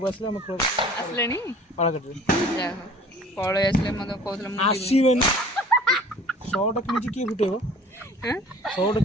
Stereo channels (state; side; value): normal; both; correlation 0.48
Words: ଆସିଲେ ଆମେ ଆସିଲେଣି ପାଳଘାଟରେ ଯାହା ହଉ ପଳେଇ ଆସିଲେ ମତେ କହୁଥିଲେ ମୁଁ ଯିବି। ଆସିବେନି 100ଟା କିଣିଛି କିଏ ଫୁଟେଇବ ଆଁ? 100ଟା